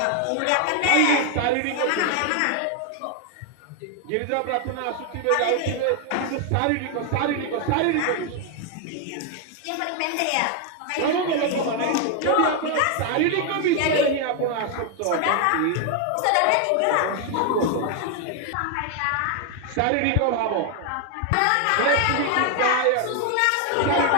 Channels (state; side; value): different; both; correlation 0.00